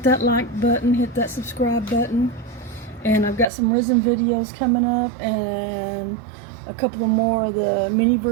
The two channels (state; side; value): drops out; left; at 3.5 s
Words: that like button, hit that subscribe button. And I've got some resin videos coming up and a couple of more of the